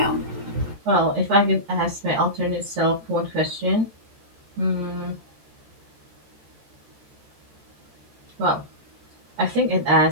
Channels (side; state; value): left; late; 14 ms